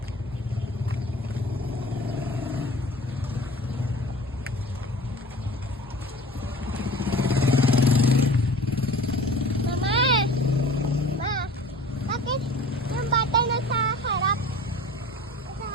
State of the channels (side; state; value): both; normal; correlation 0.42